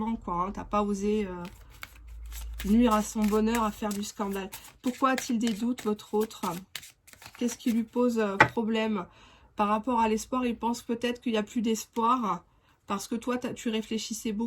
quoi. Hein, tu n'as pas osé nuire à son bonheur, à faire du scandale. Pourquoi a-t-il des doutes, votre autre? Qu'est-ce qui lui pose problème? Par rapport à l'espoir, il pense peut-être qu'il n'y a plus d'espoir parce que toi, tu réfléchissais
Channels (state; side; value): identical; both; correlation 1.00